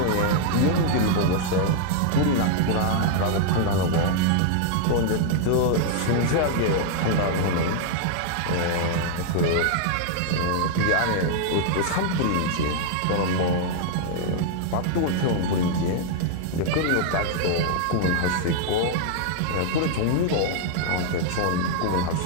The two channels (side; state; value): both; different; correlation -0.01